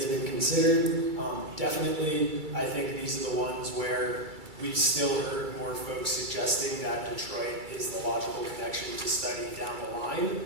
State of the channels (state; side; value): late; left; 2.3 ms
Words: been considered? Definitely, I think these are the ones where we've still heard more folks suggesting that Detroit is the logical connection to study down the line.